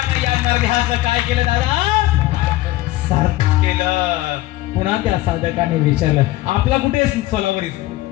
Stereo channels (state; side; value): quieter; right; 17.0 dB